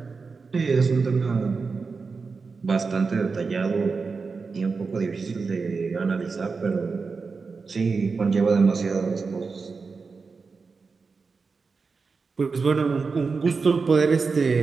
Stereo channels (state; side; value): quieter; left; 4.7 dB